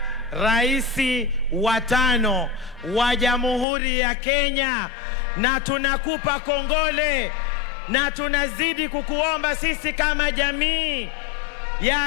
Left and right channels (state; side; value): drops out; right; at 3.7 s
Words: Raisi wa 5 wa Jamhuri ya Kenya, na tunakupa kongole na tunazidi kukuomba sisi kama jamii ya